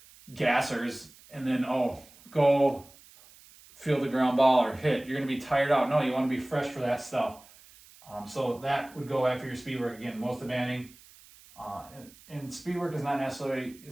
gassers and then, go field the ground ball or hit. You're going to be tired out. No, you want to be fresh for that stuff. So that would go after your speed work. Again, most demanding. And speed work is not necessarily,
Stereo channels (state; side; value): noise; right; hiss, 24 dB below the sound